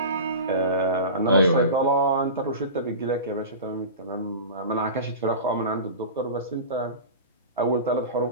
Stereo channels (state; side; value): inverted; both; correlation -0.31